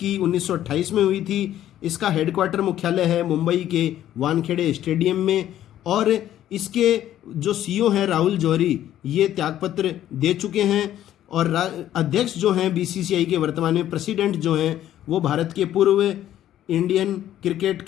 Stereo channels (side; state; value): right; quieter; 12.1 dB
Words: 1928 में हुई थी। इसका हेडक्वार्टर मुख्यालय है मुंबई के वानखेड़े स्टेडियम में। और इसके जो सीईओ हैं राहुल जौहरी, ये त्यागपत्र दे चुके हैं। और अध्यक्ष जो हैं BCCI के वर्तमान में प्रेसिडेंट जो हैं वो भारत के पूर्व Indian cricket